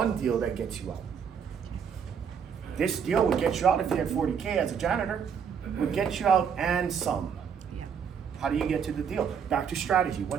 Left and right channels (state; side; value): quieter; left; 7.1 dB